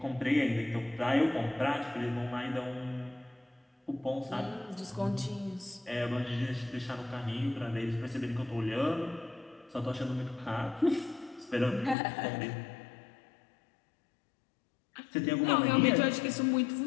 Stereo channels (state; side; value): drops out; right; at 12.0 s